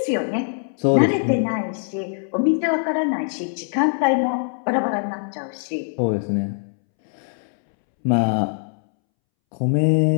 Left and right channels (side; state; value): right; silent; 64 dB below the other